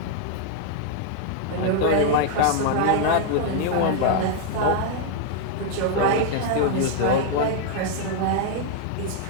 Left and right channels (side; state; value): both; different; correlation 0.00